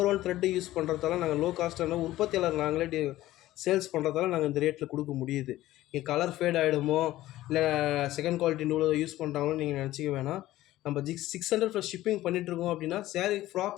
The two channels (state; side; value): quieter; right; 15.5 dB